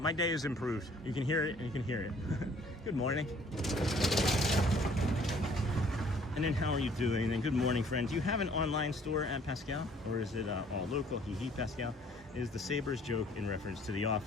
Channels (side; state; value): both; normal; correlation 0.58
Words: day has improved. You can hear it, and you can hear it. Good morning. And then how are you doing? And good morning, friends. Do you have an online store at Pascal, or is it all local? Hee Pascal. Is the Sabres joke in reference to The